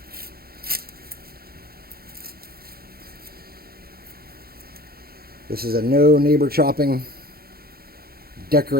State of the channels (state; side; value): late; left; 0.44 ms